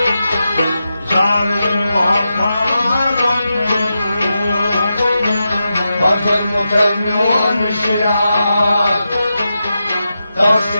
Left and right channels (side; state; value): both; inverted; correlation -0.89